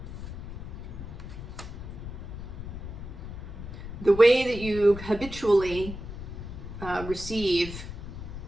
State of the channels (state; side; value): noise; left; rumble, 9 dB below the sound